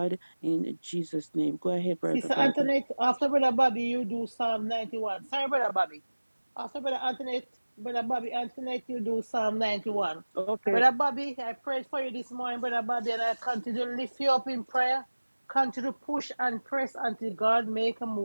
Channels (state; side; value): inverted; both; correlation -1.00